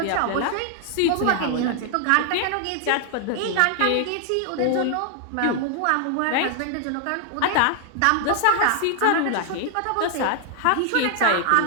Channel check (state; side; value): different; both; correlation 0.00